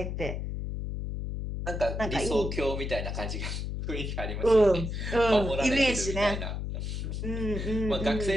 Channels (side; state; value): left; noise; hum, 4 dB below the sound